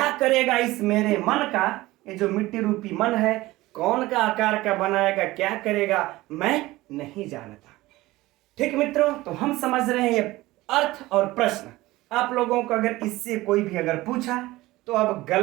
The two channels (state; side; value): quieter; left; 18.6 dB